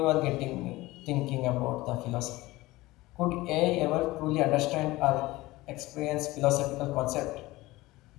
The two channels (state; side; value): quieter; right; 19.3 dB